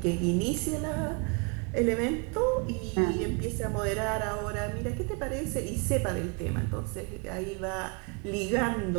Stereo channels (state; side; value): quieter; left; 33.0 dB